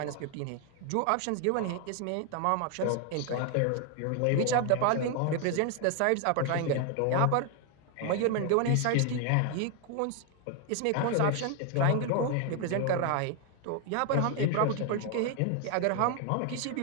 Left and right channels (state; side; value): different; both; correlation 0.01